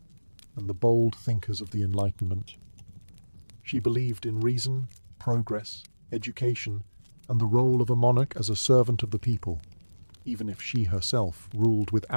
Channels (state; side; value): inverted; both; correlation -1.00